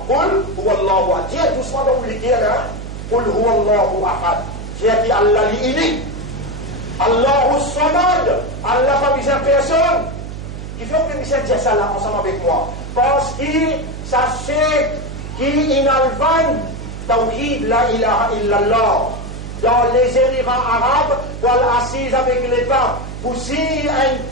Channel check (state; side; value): noise; right; hum, 9 dB below the sound